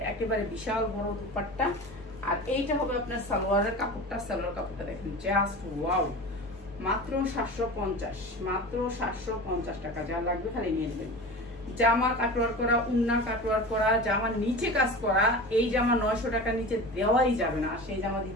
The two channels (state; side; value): normal; both; correlation 0.33